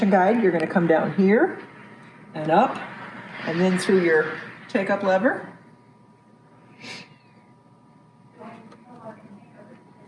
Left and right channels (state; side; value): identical; both; correlation 1.00